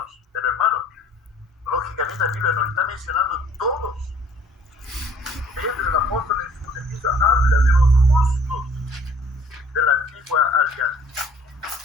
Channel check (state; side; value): normal; both; correlation 0.57